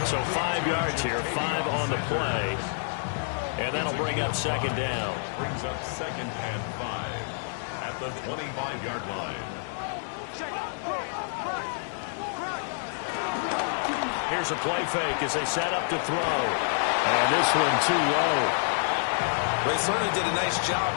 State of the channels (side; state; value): right; silent; digital silence